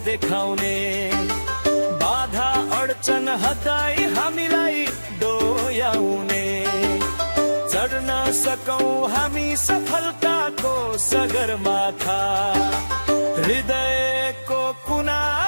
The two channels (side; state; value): both; inverted; correlation -1.00